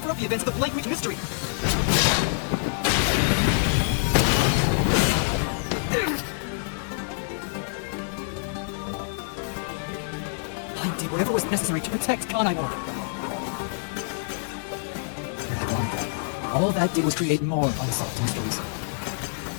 up the events of the Blank Week mystery. I did whatever was necessary to protect Kanai. All that did was create more unsolved mysteries.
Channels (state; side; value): silent; right; 61 dB below the other